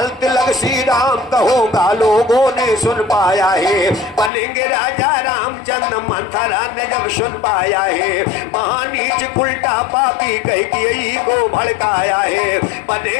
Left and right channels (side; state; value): right; drops out; at 4.3 s